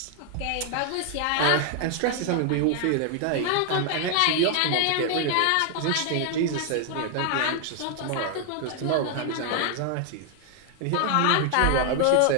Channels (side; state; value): both; different; correlation 0.00